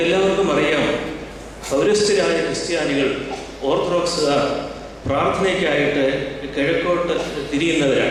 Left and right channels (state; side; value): identical; both; correlation 1.00